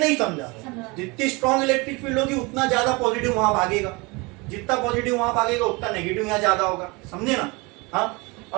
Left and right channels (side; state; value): left; quieter; 26.3 dB